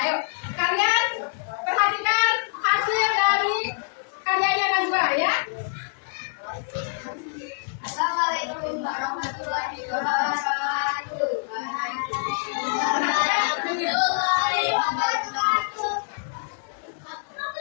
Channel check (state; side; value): silent; right; 56 dB below the other